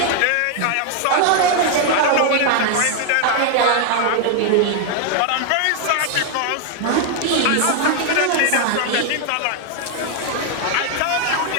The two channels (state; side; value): different; both; correlation 0.00